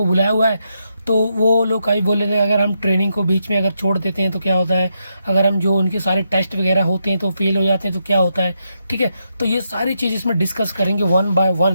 बुलाया हुआ है। तो वो लोग कई बोल रहे थे अगर हम ट्रेनिंग को बीच में अगर छोड़ देते हैं तो क्या होता है, अगर हम जो उनके सारे टेस्ट वगैरह होते हैं तो फेल हो जाते हैं तो क्या होता है। ठीक है, तो ये सारी चीज़ इसमें डिस्कस करेंगे वन बाय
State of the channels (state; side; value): inverted; both; correlation -0.82